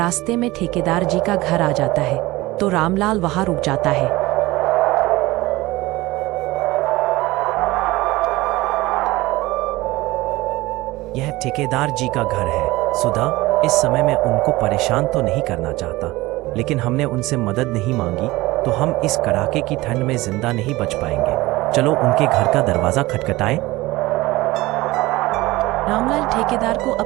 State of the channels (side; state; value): left; quieter; 19.6 dB